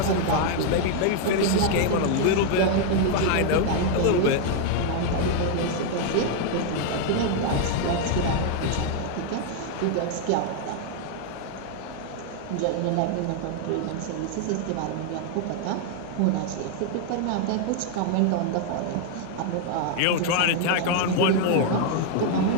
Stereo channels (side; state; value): both; different; correlation 0.00